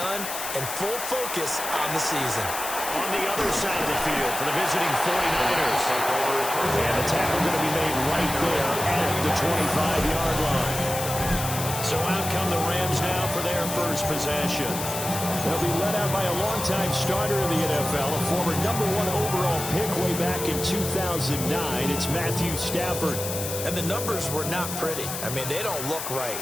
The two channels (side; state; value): left; noise; hiss, 6 dB below the sound